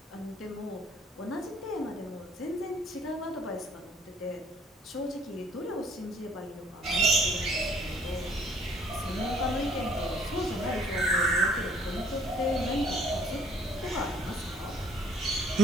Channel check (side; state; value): both; normal; correlation 0.59